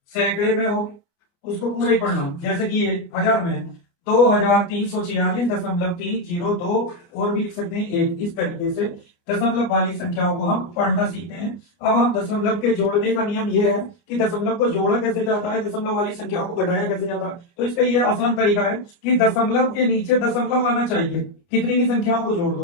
सैकड़े में हो, उसको पूरा ही पढ़ना। जैसे कि ये हजार में है 2346.302, और भी लिख सकते हैं एक। इस तरीके से दशमलव वाली संख्याओं को हम पढ़ना सीखते हैं। अब हम दशमलव के जोड़ने का नियम ये है कि दशमलव को जोड़ा कैसे जाता है, दशमलव वाली संख्याओं को घटाया कैसे जाता है। तो इसका ये आसान तरीका है कि दशमलव के नीचे दशमलव आना चाहिए, कितनी भी संख्याओं को जोड़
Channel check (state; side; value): late; right; 29 ms